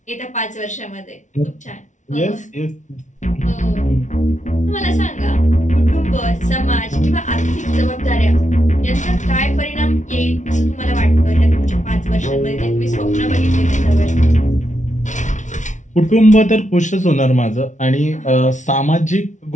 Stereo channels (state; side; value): late; right; 0.36 ms